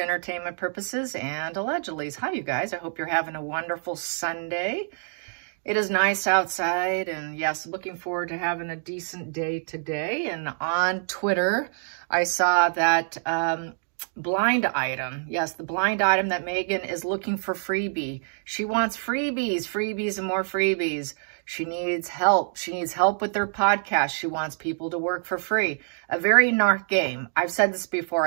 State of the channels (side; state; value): left; silent; digital silence